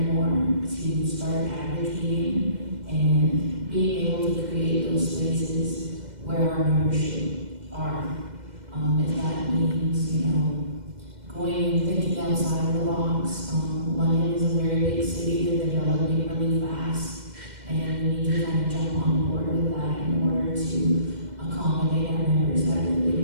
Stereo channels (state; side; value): late; left; 2.1 ms